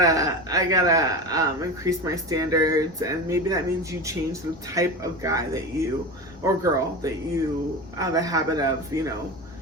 increase my standards, and maybe that means you change the type of guy that you, or girl, that you have a habit of,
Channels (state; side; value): normal; both; correlation 0.26